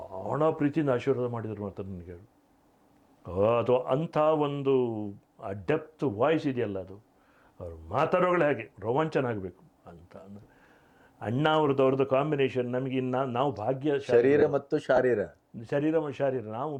ಪ್ರೀತಿಯಿಂದ ಆಶೀರ್ವಾದ ಮಾಡಿದರು ಅಂತ ನನಗೆ. ಅದು ಅಂಥ ಒಂದು ಆ ಡೆಪ್ತ್ ವಾಯ್ಸ್ ಇದೆಯಲ್ಲ, ಅದು ಅವರು ಮಾತಾಡೋಗಳೇ ಹಾಗೆ ರೋಮಾಂಚನ ಆಗಬೇಕು ಅಂತ. ಅಂದರೆ ಅಣ್ಣ ಅವ್ರದ್ದು ಕಾಂಬಿನೇಷನ್ ನಮಗೆ ನಾವು ಶರೀರ ಮತ್ತು ಶಾರೀರ ನಾವು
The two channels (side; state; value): both; identical; correlation 1.00